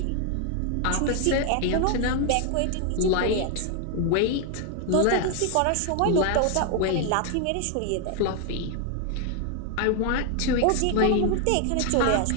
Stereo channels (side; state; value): both; different; correlation 0.00